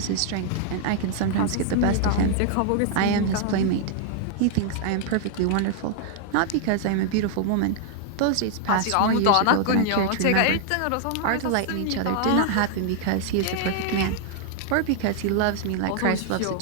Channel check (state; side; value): different; both; correlation 0.00